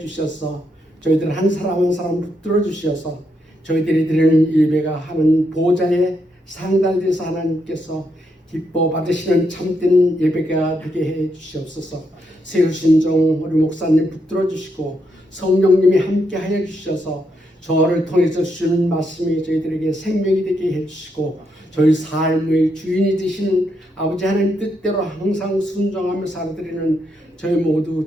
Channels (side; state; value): both; normal; correlation 0.79